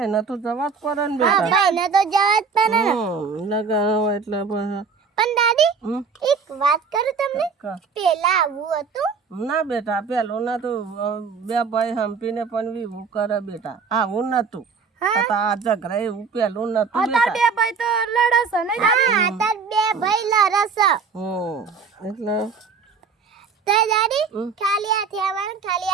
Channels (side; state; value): left; quieter; 5.4 dB